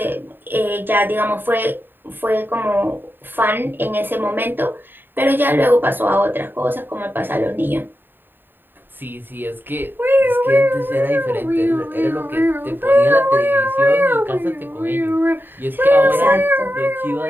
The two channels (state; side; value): late; left; 0.094 ms